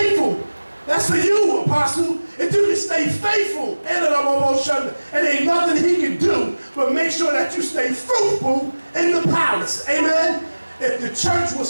That's for you, Apostle. If you can stay faithful, and ain't nothing he can do but make sure that you stay fruitful in the palace. Amen. If the church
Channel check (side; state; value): both; inverted; correlation -1.00